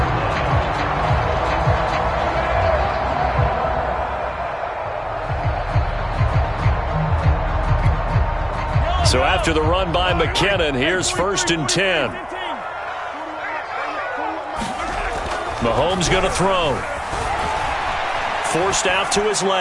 So after the run by McKinnon, here's 1st and 10. Mahomes going to throw. Forced out to his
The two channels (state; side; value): identical; both; correlation 1.00